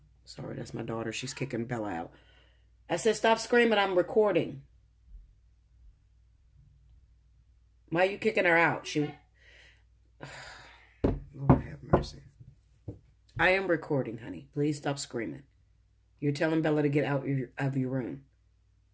Sorry, that's my daughter. She's kicking Bella out. I said, stop screaming, I'm recording. Why are you kicking her out? Lord have mercy. I am recording, honey. Please stop screaming. You're telling Bella to get out of your room.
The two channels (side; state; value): both; identical; correlation 1.00